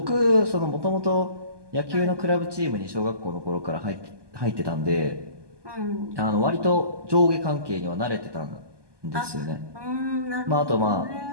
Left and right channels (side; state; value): left; late; 1.2 ms